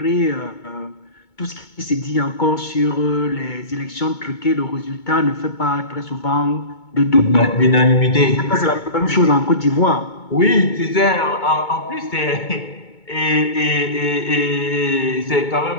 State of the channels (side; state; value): right; late; 2.2 ms